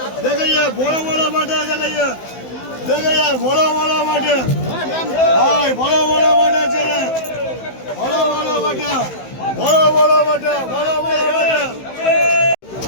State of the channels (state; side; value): late; right; 15 ms